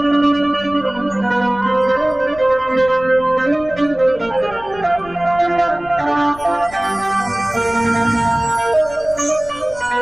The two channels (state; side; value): noise; left; rumble, 19 dB below the sound